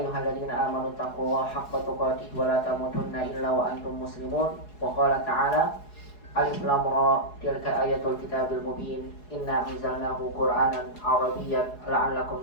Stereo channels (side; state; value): right; late; 4.8 ms